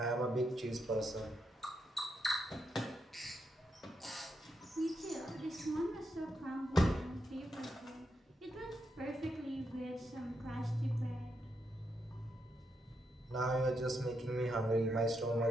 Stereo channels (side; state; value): both; normal; correlation 0.82